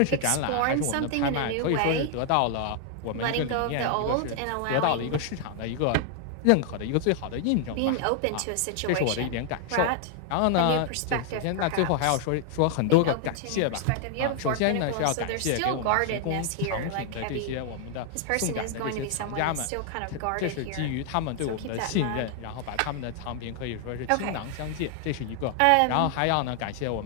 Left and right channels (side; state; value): both; different; correlation 0.00